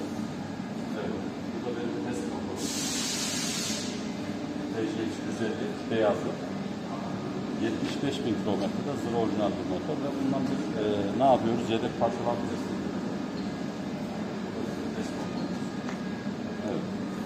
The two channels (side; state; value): both; identical; correlation 1.00